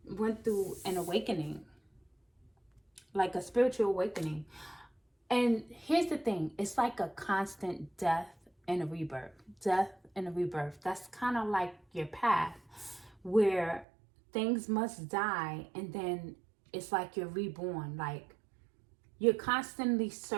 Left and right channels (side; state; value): left; drops out; at 13.9 s